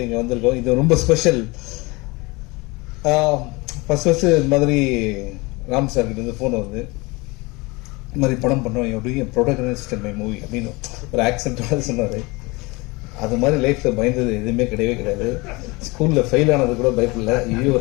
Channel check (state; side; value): quieter; right; 24.9 dB